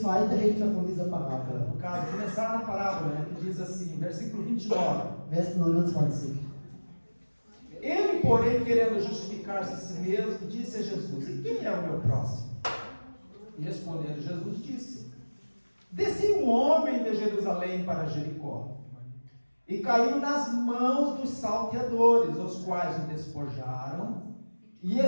Hälfte von dieser Parabel. No caso, começar na parábola, né? Que diz assim, versículo 29. Vers 29. Ele, porém, querendo justificar-se a si mesmo, disse a Jesus: E quem é o meu próximo? E respondendo, Jesus disse: Descia um homem de Jerusalém para Jericó, e caiu nas mãos dos salteadores, os quais o despojaram, e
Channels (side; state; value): both; inverted; correlation -1.00